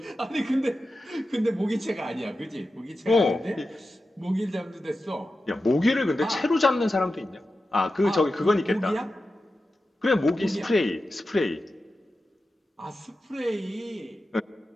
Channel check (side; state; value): both; normal; correlation 0.92